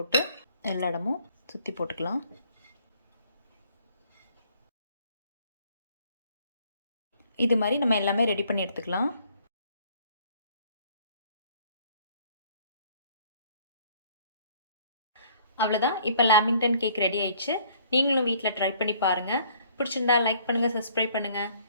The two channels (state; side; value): inverted; both; correlation -0.60